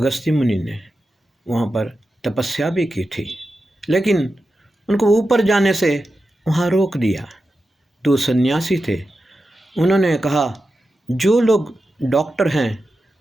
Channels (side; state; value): both; normal; correlation 0.91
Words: मुनि ने वहाँ पर तपस्या भी की थी, लेकिन उनको ऊपर जाने से वहाँ रोक दिया। दो सन्यासी थे, उन्होंने कहा जो लोग डॉक्टर हैं